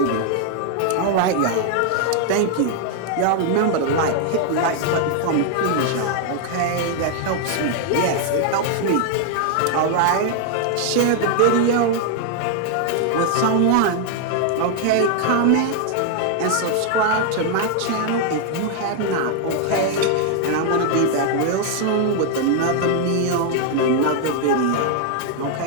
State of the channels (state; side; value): different; both; correlation 0.00